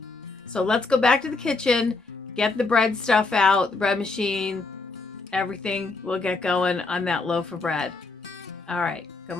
So let's go back to the kitchen. Get the bread stuff out, the bread machine, everything. We'll get going on that loaf of bread. All right,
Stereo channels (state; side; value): quieter; right; 3.7 dB